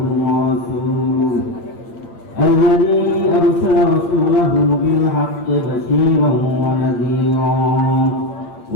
ورسوله الذي أرسل رسوله بالحق بشيرا ونذيرا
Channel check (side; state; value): right; late; 9.0 ms